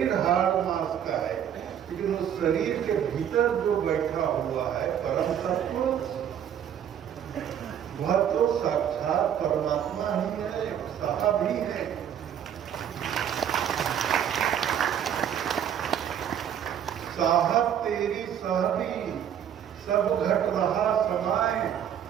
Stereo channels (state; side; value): quieter; left; 9.4 dB